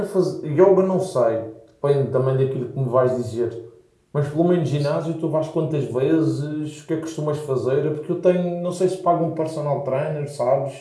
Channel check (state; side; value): identical; both; correlation 1.00